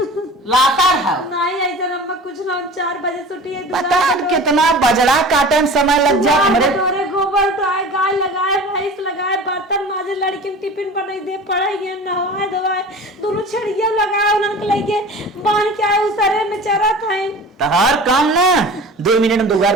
लातार है नहीं ऐसा रम्मा कुछ ना, 4 बजे छुट्टी है। पता कितना बजड़ा काटे में समय लग जाए हमरे। हमारे गोबर उठाए, गाय लगाए, भैंस लगाए, बर्तन माजे, लड़की में टिफिन बनाई दे, पढ़ाई नहवाए धोवाए, दोनों छड़िया लगाए, उन्होंने लेके बांध के आए उसरे में चरा खाए। तो हर काम ना 2 मिनट में दुगार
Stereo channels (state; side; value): normal; both; correlation 0.38